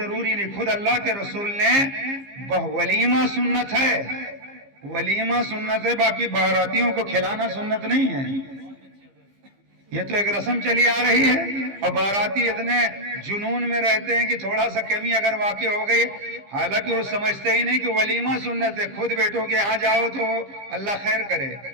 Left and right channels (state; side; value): late; left; 15 ms